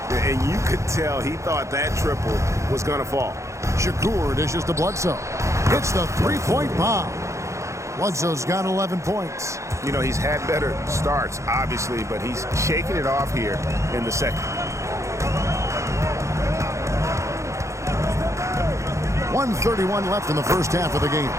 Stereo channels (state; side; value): late; left; 0.14 ms